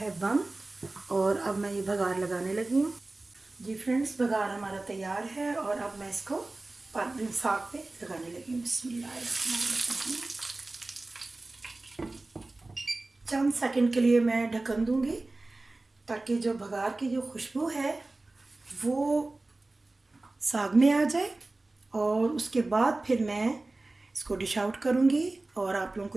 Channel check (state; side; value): quieter; left; 3.1 dB